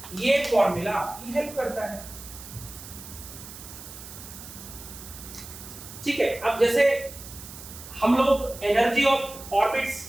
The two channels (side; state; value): right; noise; hiss, 14 dB below the sound